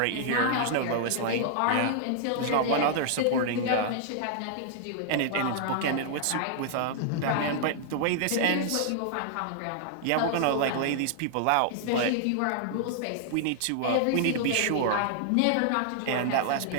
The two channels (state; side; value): different; both; correlation -0.01